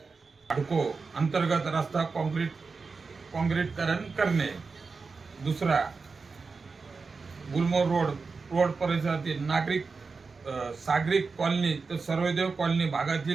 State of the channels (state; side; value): quieter; left; 4.5 dB